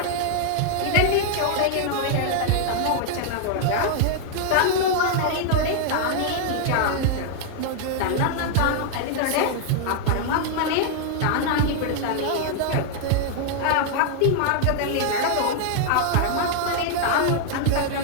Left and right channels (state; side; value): different; both; correlation 0.00